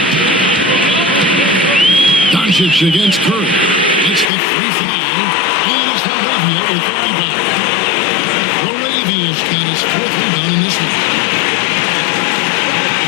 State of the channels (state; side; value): drops out; right; at 4.3 s